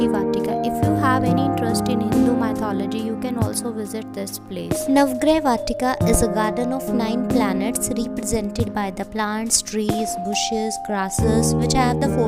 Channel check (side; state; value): both; identical; correlation 1.00